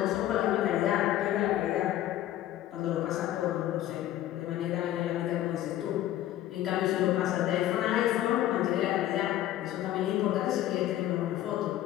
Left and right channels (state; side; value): quieter; right; 13.3 dB